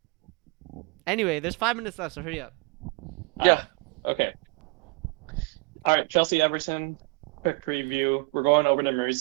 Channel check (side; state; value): left; quieter; 26.3 dB